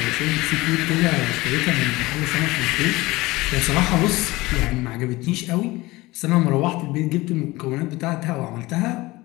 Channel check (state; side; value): quieter; right; 20.5 dB